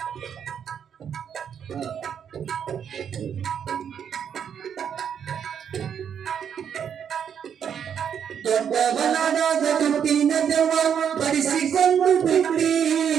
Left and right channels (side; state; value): left; quieter; 8.1 dB